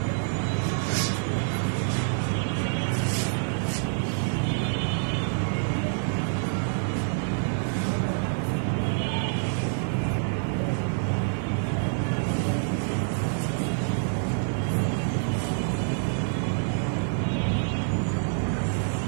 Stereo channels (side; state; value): left; silent; 60 dB below the other